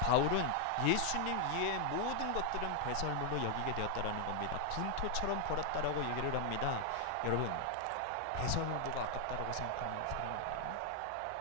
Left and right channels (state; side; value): different; both; correlation 0.00